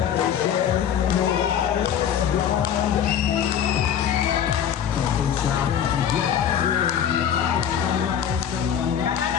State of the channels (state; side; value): quieter; right; 8.9 dB